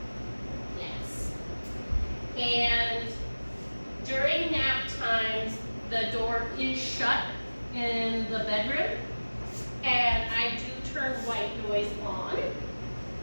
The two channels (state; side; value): inverted; both; correlation -1.00